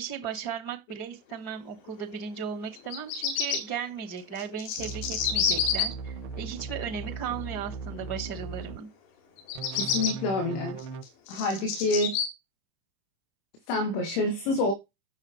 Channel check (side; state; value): right; late; 26 ms